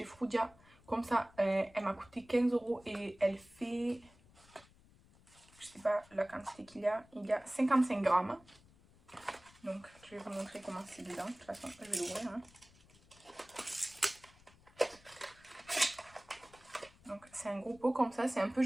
Frudia. Comme ça, elle m'a coûté 15 euros et elle fait, je sais pas la quantité qu'il y a 55 grammes. Donc, je vais vous montrer comment c'est dedans. De toute façon, je vais l'ouvrir. Hein. Donc, c'est un gros pot comme ça, c'est un peu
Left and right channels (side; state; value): left; noise; rumble, 26 dB below the sound